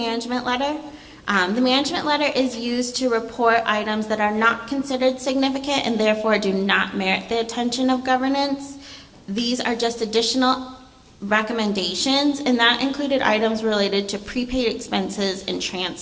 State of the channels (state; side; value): identical; both; correlation 1.00